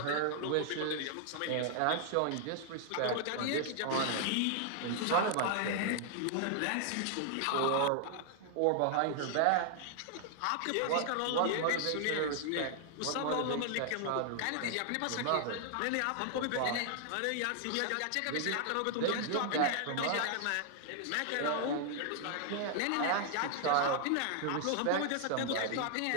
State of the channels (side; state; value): both; different; correlation 0.00